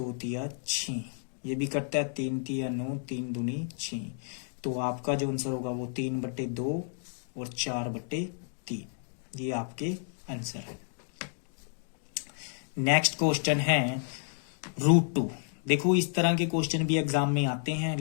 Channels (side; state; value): right; silent; 57 dB below the other